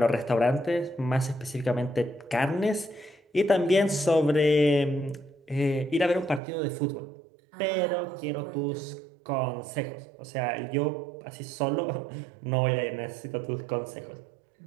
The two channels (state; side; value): drops out; left; at 6.4 s